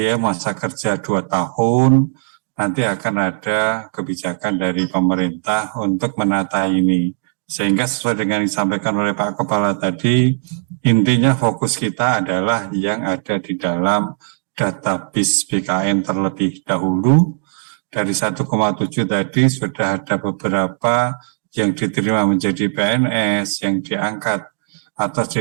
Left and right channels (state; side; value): silent; left; digital silence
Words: masa kerja 2 tahun, nanti akan ada kebijakan dari pemerintah untuk menata ini. Sehingga sesuai dengan yang disampaikan oleh Pak Kepala tadi, intinya fokus kita adalah yang ada di dalam database BKN terlebih dahulu. Dari 1,7 tadi sudah ada beberapa yang diterima menjadi PNS, yang diangkat atau